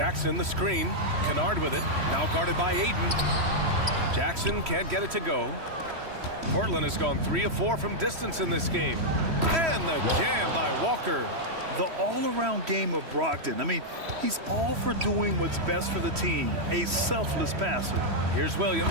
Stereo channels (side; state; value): left; late; 3.1 ms